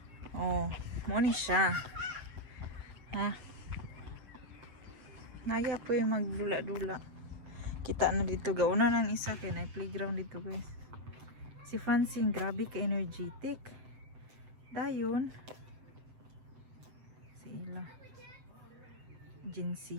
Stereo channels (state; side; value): late; left; 7.8 ms